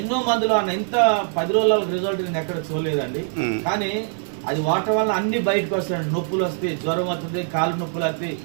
ఎన్నో మందులు అన్న ఇంత 10 రోజుల రిజల్ట్ నేను ఎక్కడ చూడలేదండి. కానీ అది వాడటం వల్ల అన్ని బయటకు వస్తాయండి. నొప్పులు వస్తాయి, జ్వరం వస్తుంది, కాలు నొప్పులు వస్తాయి,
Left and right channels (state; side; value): silent; left; 64 dB below the other